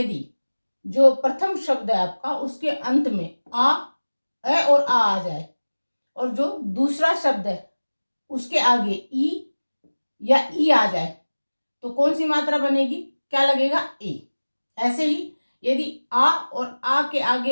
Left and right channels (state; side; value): inverted; both; correlation -1.00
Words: जो प्रथम शब्द है आपका उसके अंत में ए और आ जाए, और जो दूसरा शब्द है उसके आगे ई या ई आ जाए, तो कौन सी मात्रा बनेगी, क्या लगेगा, ए। ऐसे ही यदि आ और आ के